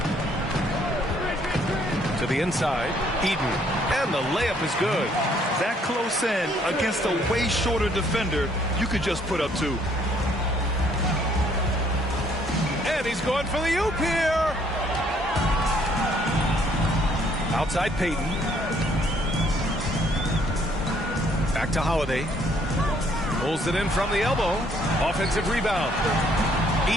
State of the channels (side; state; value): both; normal; correlation 0.65